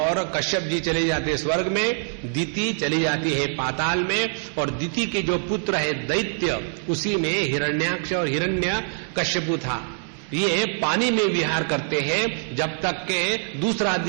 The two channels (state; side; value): silent; left; digital silence